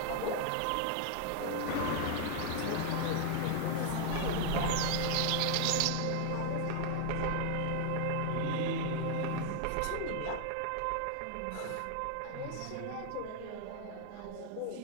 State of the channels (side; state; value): both; different; correlation 0.00